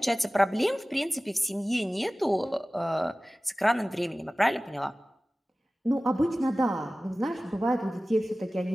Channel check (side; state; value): both; normal; correlation 0.97